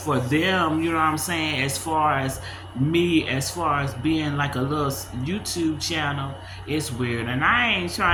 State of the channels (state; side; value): identical; both; correlation 1.00